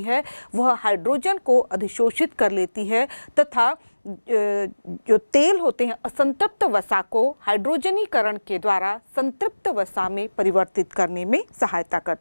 है, वह हाइड्रोजन को अधिशोषित कर लेती है तथा जो तेल होते हैं असंतृप्त वसा को हाइड्रोजनीकरण के द्वारा संतृप्त वसा में परिवर्तित करने में सहायता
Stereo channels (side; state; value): both; inverted; correlation -1.00